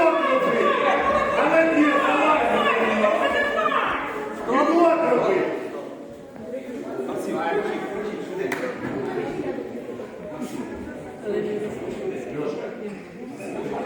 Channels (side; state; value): both; identical; correlation 1.00